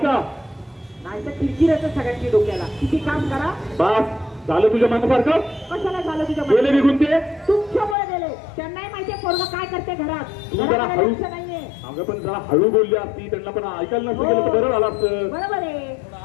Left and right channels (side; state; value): right; drops out; at 8.0 s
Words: नाही तर किरकिर येतं सगळ्यांची डोक्याला। किती काम करा, बस झालं तुझ्या मनासारखं? कशाला झालं तुझ्या गेले निघून ते? तुमच्यामुळे गेले, त्यांनाही माहितीये पोरगं काय करते घरात, जरा हळू नाहीये। अगं पण जरा हळू बोलली असती, त्यांना पण ऐकायला नसतं गेलं तर बरं झालं असतं। बरोबर आहे,